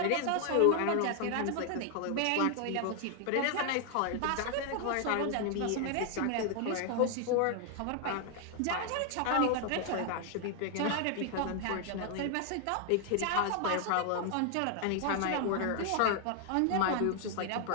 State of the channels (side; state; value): both; different; correlation 0.00